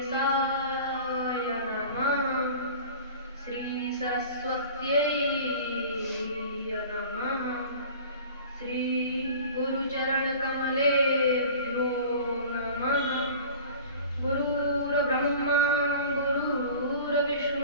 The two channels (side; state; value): both; inverted; correlation -0.42